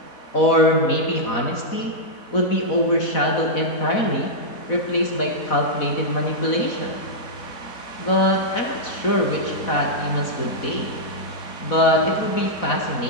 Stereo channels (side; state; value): right; late; 4.1 ms